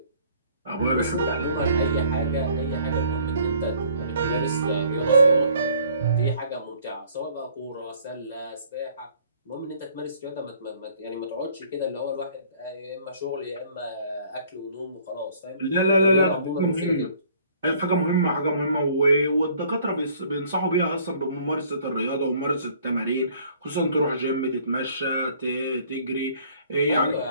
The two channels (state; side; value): inverted; both; correlation -0.58